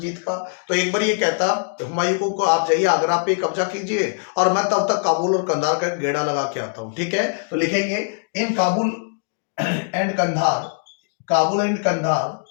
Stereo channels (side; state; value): right; silent; digital silence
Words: का। तो एक बार ये कहता हुमायूं को आप जाइए आगरा पे कब्जा कीजिए और मैं तब तक काबुल और कंधार का गेड़ा लगा के आता हूं, ठीक है। तो लिखेंगे इन काबुल एंड कंधार, काबुल एंड कंधार,